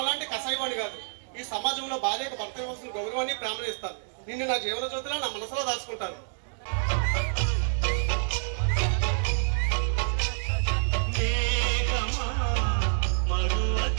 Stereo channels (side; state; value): left; silent; digital silence